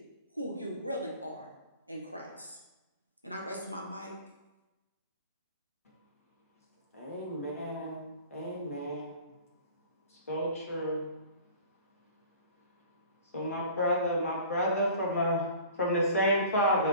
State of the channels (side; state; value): both; inverted; correlation -0.44